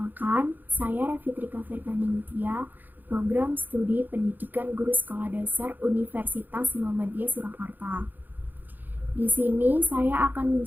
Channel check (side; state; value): left; late; 0.087 ms